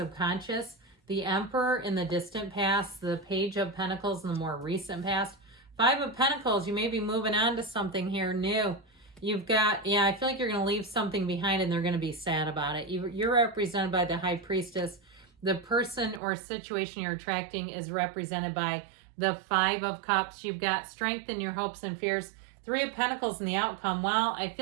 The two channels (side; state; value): left; drops out; at 16.2 s